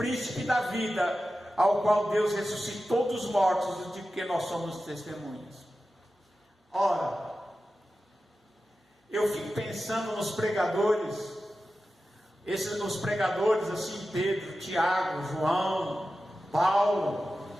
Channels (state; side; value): normal; both; correlation 0.93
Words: da vida, ao qual Deus ressuscitou dos mortos, de que nós somos testemunhas. Ora, eu fico pensando nos pregadores, nos pregadores assim, Pedro, Tiago, João, Paulo,